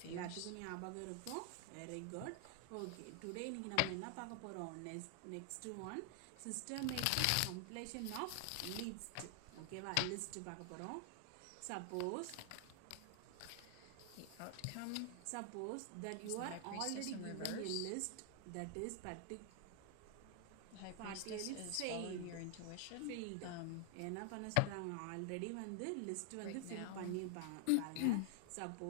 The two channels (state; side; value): different; both; correlation 0.00